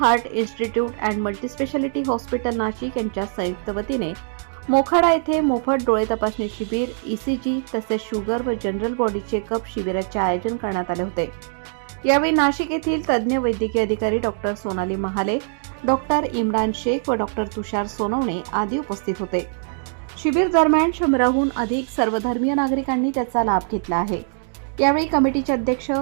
institute and multispeciality hospital Nashik यांच्या संयुक्त वतीने मोखाडा येथे मोफत डोळे तपासणी शिबिर, ईसीजी तसेच शुगर व जनरल बॉडी चेकअप शिबिराचे आयोजन करण्यात आले होते। यावेळी नाशिक येथील तज्ज्ञ वैद्यकीय अधिकारी डॉक्टर सोनाली महाले, डॉक्टर इम्रान शेख व डॉक्टर तुषार सोनवणे आदी उपस्थित होते। शिबिर दरम्यान 100हून अधिक सर्वधर्मीय नागरिकांनी त्याचा लाभ घेतला आहे। यावेळी कमिटीचे अध्यक्ष,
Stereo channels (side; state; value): left; silent; digital silence